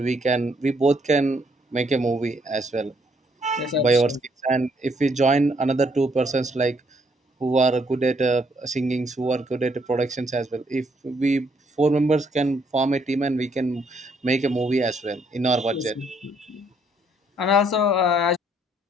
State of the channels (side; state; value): both; normal; correlation 0.69